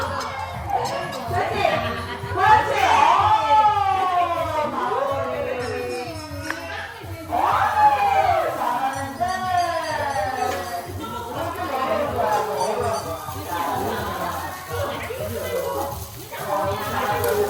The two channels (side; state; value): both; identical; correlation 1.00